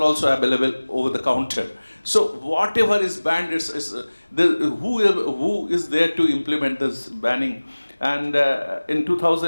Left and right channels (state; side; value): inverted; both; correlation -1.00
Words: also available over the counter. So whatever is banned, who is there to implement this banning? And in